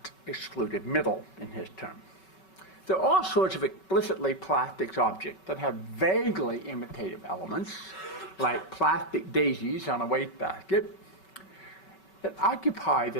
excluded middle in his term. There are all sorts of explicitly plastics objects that have vaguely imitative elements, like plastic daisies on a wastebasket, that occupy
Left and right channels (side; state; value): right; late; 5.3 ms